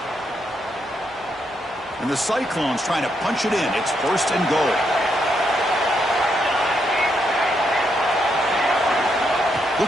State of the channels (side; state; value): both; normal; correlation 0.78